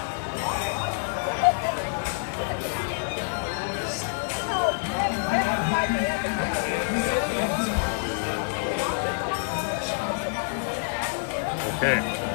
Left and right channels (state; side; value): silent; right; digital silence